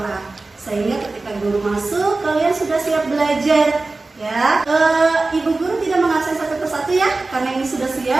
sehingga ketika guru masuk kalian sudah siap belajar ya. Ibu Guru tidak mengabsen satu persatu ya, karena ini sudah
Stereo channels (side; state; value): left; quieter; 3.4 dB